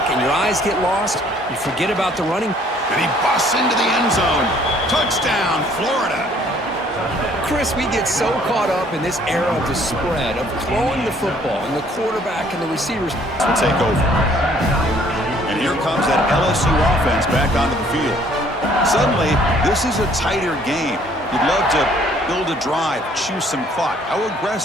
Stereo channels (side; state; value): both; normal; correlation 0.60